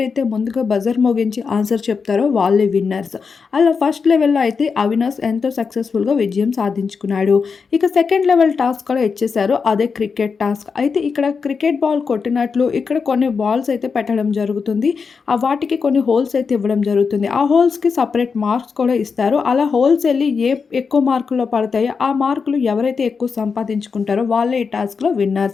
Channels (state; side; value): quieter; right; 5.4 dB